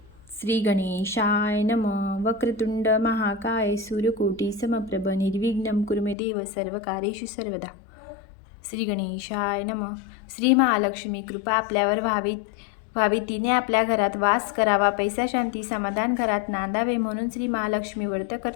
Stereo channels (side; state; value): right; drops out; at 6.2 s